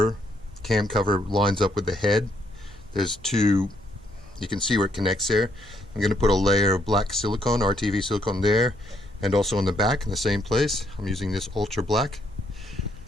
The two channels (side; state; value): both; normal; correlation 0.72